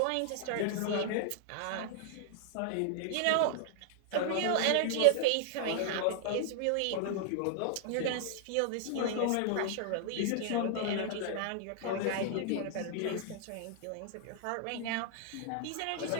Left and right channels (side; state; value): both; different; correlation -0.01